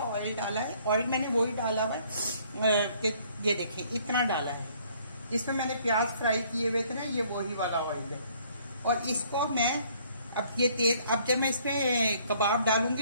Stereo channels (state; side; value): inverted; both; correlation -0.61